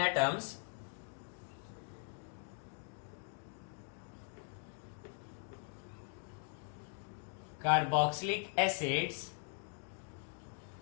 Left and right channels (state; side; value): silent; right; 51 dB below the other